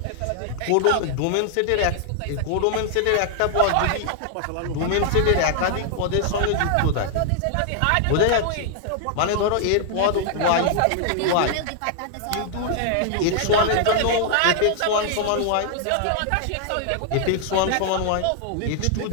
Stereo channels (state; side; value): different; both; correlation 0.00